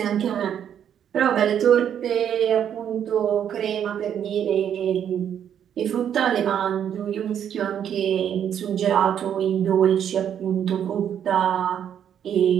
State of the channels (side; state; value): left; quieter; 9.2 dB